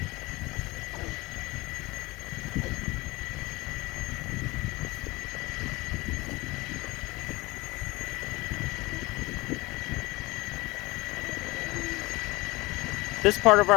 This part of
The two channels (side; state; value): right; quieter; 22.1 dB